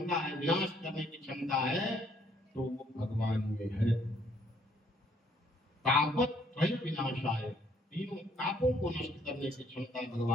है, विनाश करने की क्षमता है, तो वो भगवान में है। तापत त्रय विनाशाय, तीनों तापों को नष्ट करने की क्षमता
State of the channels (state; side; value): normal; both; correlation 0.66